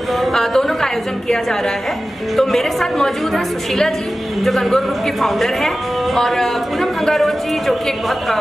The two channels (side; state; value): both; normal; correlation 0.95